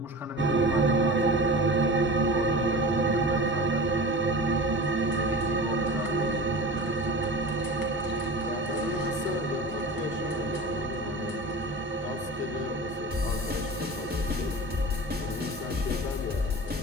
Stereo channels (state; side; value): normal; both; correlation 0.33